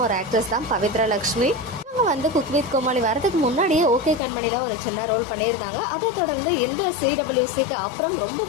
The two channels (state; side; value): drops out; right; at 4.2 s